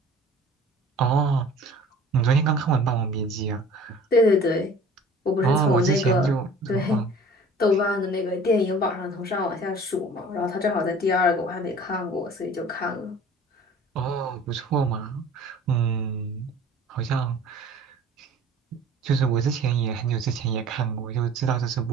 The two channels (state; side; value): normal; both; correlation 0.46